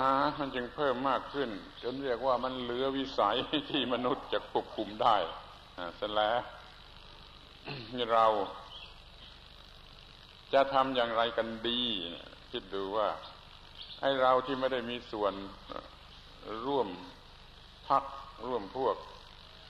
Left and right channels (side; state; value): both; identical; correlation 1.00